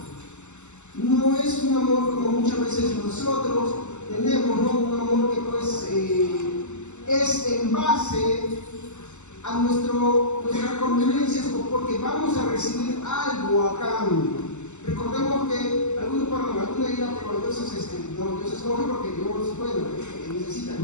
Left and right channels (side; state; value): right; late; 0.83 ms